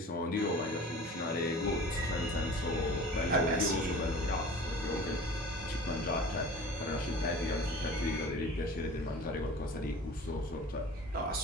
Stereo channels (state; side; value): normal; both; correlation 0.42